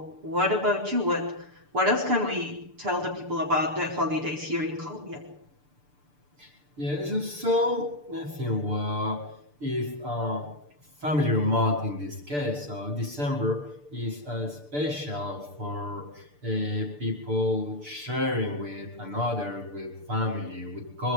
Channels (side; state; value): left; late; 6.8 ms